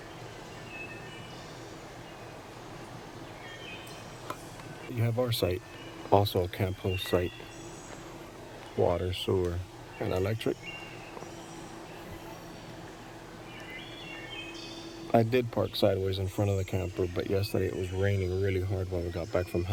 You have our site, also a camp host site. Water, sewer, and electric. I did park sideways in front of the camper, but yesterday it was raining really hard when we got back from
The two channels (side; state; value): both; identical; correlation 1.00